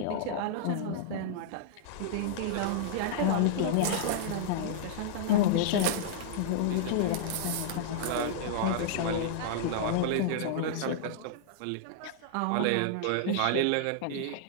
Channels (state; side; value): different; both; correlation -0.01